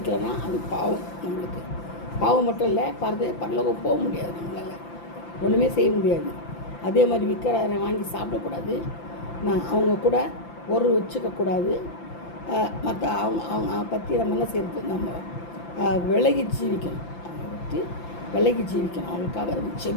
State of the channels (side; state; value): right; late; 5.9 ms